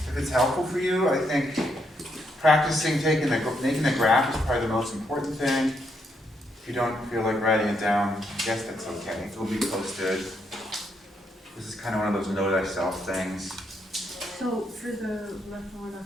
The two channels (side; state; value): both; normal; correlation 0.77